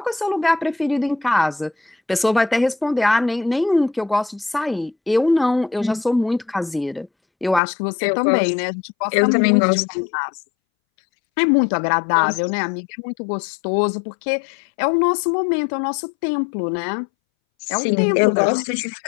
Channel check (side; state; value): right; drops out; at 7.6 s